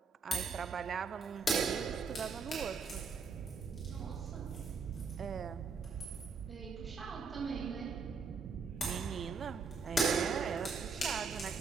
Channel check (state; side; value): quieter; left; 4.6 dB